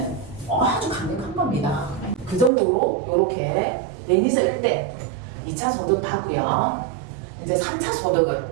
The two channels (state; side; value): drops out; left; at 2.5 s